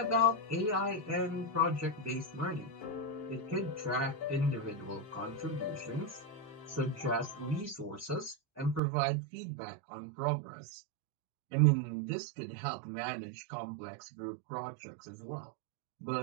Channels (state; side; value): drops out; left; at 8.8 s